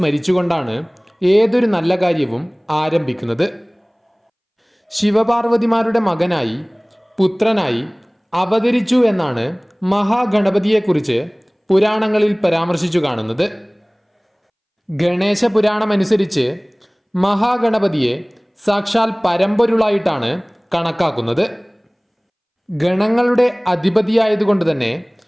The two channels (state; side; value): identical; both; correlation 1.00